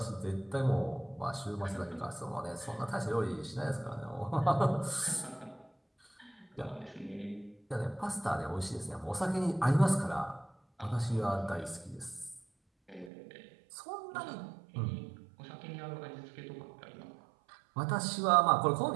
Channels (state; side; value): drops out; left; at 13.1 s